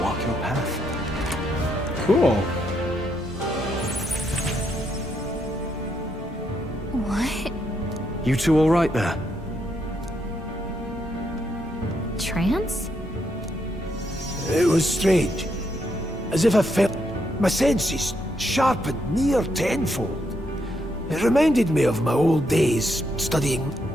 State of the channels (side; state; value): both; normal; correlation 0.77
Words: walk your path. Cool. What? You two all right there? Trance? It was strange. As if I felt my senses sharpened near tenfold. It reminded me of my old days studying.